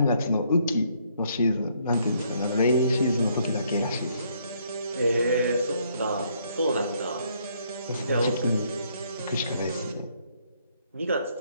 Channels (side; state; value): both; inverted; correlation -0.69